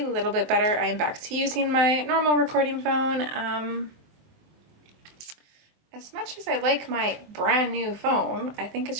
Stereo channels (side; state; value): left; late; 24 ms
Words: little bit better. I'm back to using my normal recording phone. As much as I like my brand new phone, I think